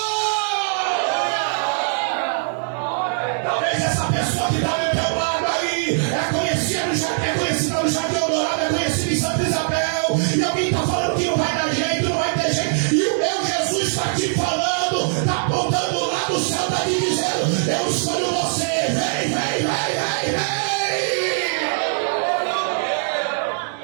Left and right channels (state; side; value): silent; left; digital silence